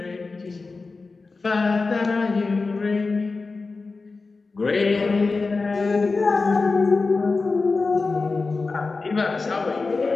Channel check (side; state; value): right; quieter; 4.0 dB